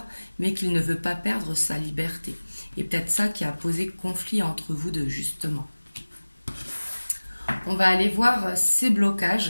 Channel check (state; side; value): inverted; both; correlation -1.00